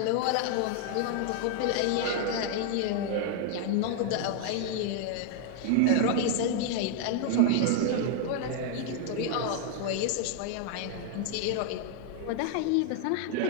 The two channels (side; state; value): both; different; correlation 0.00